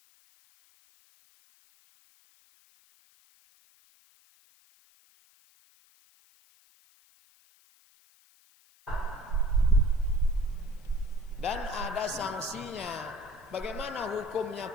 Dan ada sanksinya. Bagaimana hukumnya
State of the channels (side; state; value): left; noise; hiss, 30 dB below the sound